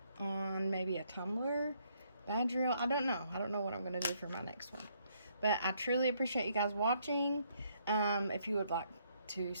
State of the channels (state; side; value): inverted; both; correlation -0.71